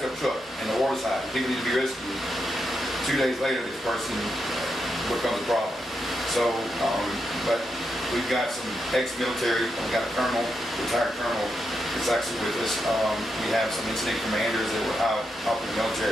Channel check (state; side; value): normal; both; correlation 0.84